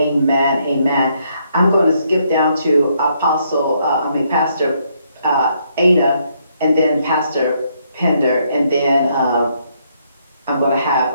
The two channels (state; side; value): inverted; both; correlation -0.73